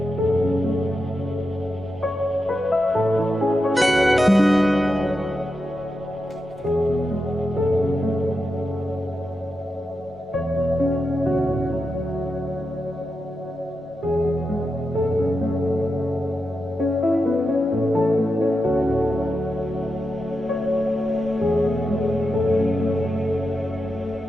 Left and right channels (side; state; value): both; normal; correlation 0.88